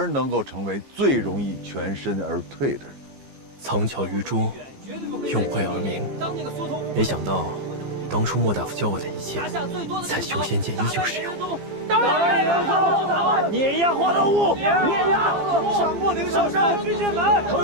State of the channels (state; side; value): late; left; 15 ms